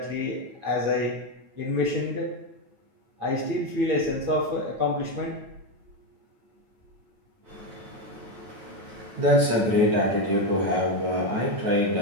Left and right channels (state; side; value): late; left; 9.2 ms